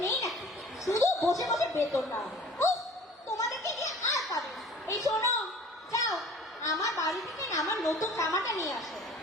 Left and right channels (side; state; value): both; normal; correlation 0.46